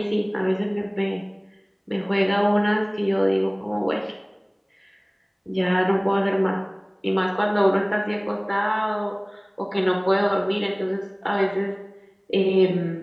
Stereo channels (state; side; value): identical; both; correlation 1.00